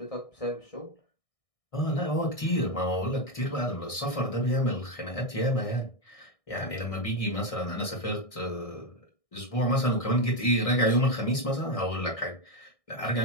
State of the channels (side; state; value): right; late; 1.6 ms